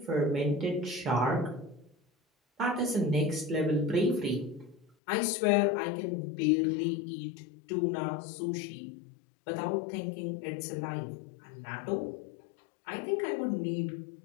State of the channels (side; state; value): right; drops out; at 4.9 s